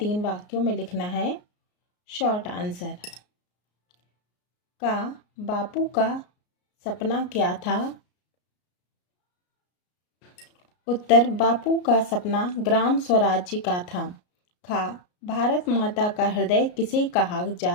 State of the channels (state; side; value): late; right; 33 ms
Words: वाक्यों में लिखना है। Short answer. का बापू का सपना क्या था? उत्तर, बापू का सपना ग्राम स्वराज्य का था। खा, भारत माता का हृदय किसे कहा